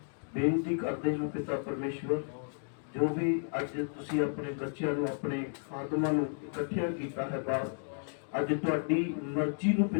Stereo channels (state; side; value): silent; right; 56 dB below the other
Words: ਬੇਨਤੀ ਕਰਦੇ ਹਾਂ ਪਿਤਾ ਪਰਮੇਸ਼ਵਰ, ਜੋ ਵੀ ਅੱਜ ਤੁਸੀਂ ਆਪਣੇ ਬੱਚਿਆਂ ਨੂੰ ਆਪਣੇ ਆਗਮਾਂ ਨੂੰ ਇਕੱਠਿਆਂ ਕੀਤਾ ਹੈ ਬਾਪ, ਅੱਜ ਤੁਹਾਡੀ ਮਰਜ਼ੀ ਨੂੰ